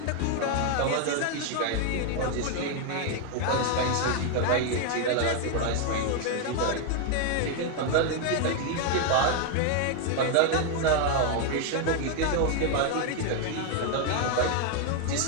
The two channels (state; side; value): different; both; correlation 0.00